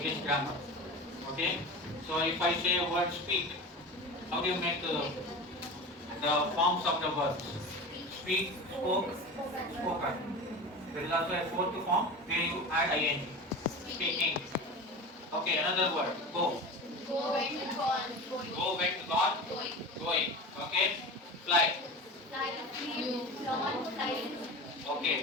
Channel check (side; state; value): both; normal; correlation 0.30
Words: grammar. Okay. So if I say a word speak, how do you make the forms of the verbs? Speak, spoke, spoken. There is also a fourth form where you add ing. Speaking. Okay, another word. Go. Go went gone. Go, went, gone, Going. going. Okay. Fly. Fly. Flew. Flown. Flying.